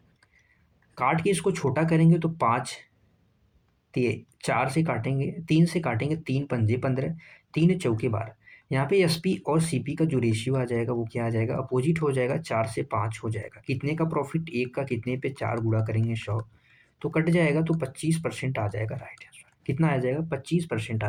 काट के इसको छोटा करेंगे तो 5, 4 से काटेंगे, 3 से काटेंगे, 3 पंजे 15, 3 चौके 12। यहाँ पे एसपी और सीपी का जो रेशियो आ जाएगा वो क्या आ जाएगा, अपोजिट हो जाएगा, 4 से 5 हो जाएगा। कितने का प्रॉफिट, एक का, कितने पे 4 गुणा करेंगे 100, तो कट जाएगा, तो 25% आ जाएगा राइट आंसर। कितना आ जाएगा, 25%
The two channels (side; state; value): both; identical; correlation 1.00